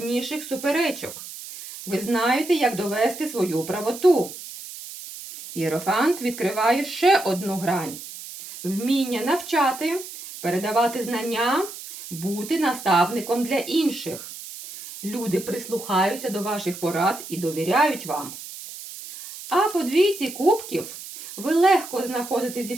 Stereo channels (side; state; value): right; noise; hiss, 12 dB below the sound